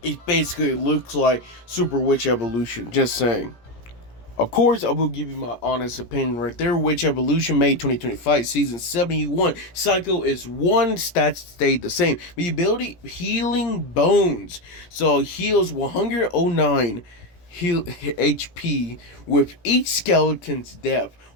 it basically looks like super witch evolution. Just saying. Of course, I will give you my honest opinion right there. Witch Evolution May 2025, Season 71. Cycle is one, stats stayed the same. The ability, Healing Bones. So, heals 109 heal HP with each skeleton's death.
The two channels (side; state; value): right; late; 17 ms